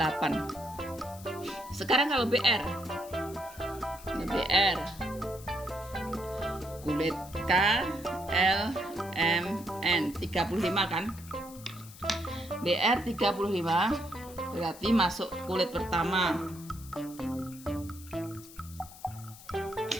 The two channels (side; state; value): left; noise; hiss, 18 dB below the sound